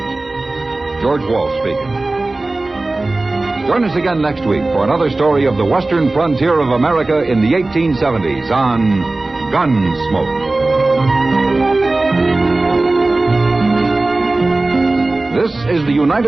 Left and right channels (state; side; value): quieter; left; 3.0 dB